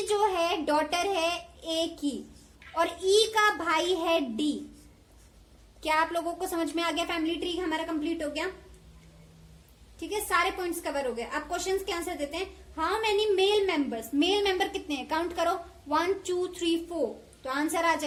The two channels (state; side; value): identical; both; correlation 1.00